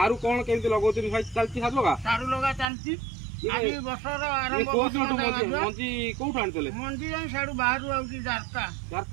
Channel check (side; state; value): left; drops out; at 2.7 s